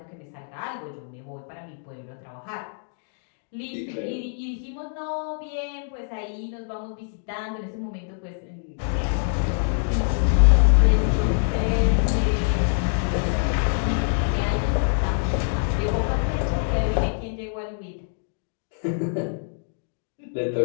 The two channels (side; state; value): right; silent; digital silence